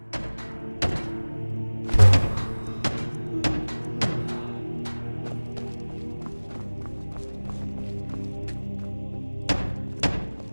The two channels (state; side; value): inverted; both; correlation -1.00